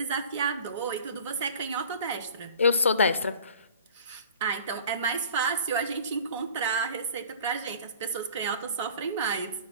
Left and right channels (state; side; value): inverted; both; correlation -0.45